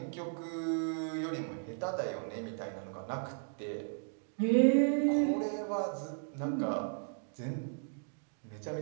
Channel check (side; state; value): left; silent; digital silence